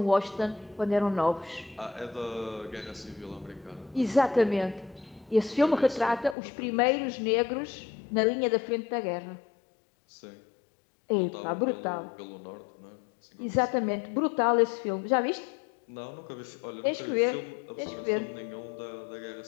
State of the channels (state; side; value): drops out; right; at 6.4 s